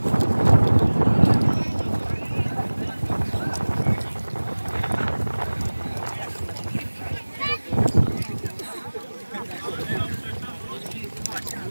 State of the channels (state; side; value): inverted; both; correlation -1.00